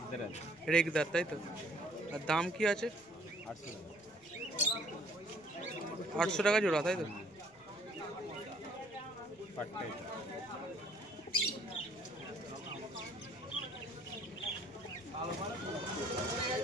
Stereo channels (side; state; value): left; noise; rumble, 28 dB below the sound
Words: রেগদার তাই তো? আর দাম কি আছে? 800 টাকা জোড়া তাই তো?